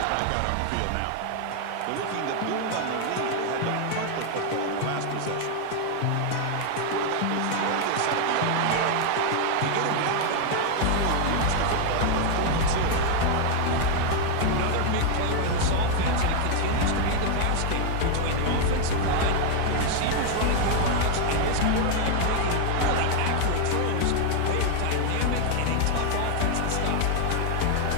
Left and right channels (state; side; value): different; both; correlation 0.00